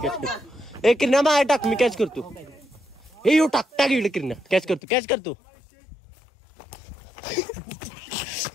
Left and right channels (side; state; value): right; drops out; at 4.8 s